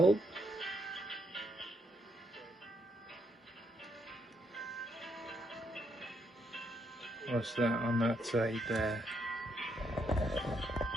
What's that on that side there?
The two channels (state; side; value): normal; both; correlation 0.75